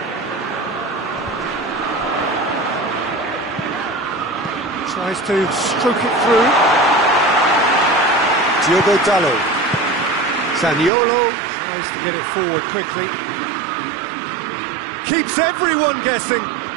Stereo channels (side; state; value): left; drops out; at 10.9 s